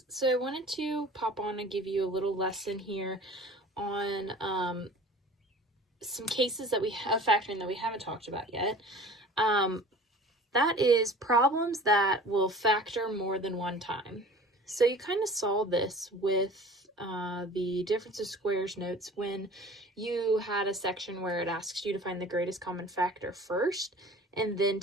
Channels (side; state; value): both; normal; correlation 0.44